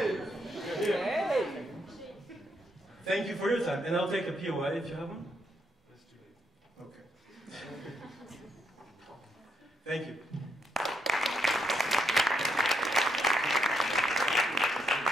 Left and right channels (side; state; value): both; normal; correlation 0.77